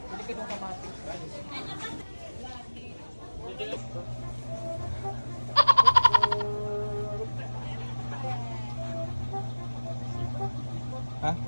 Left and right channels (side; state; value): both; inverted; correlation -1.00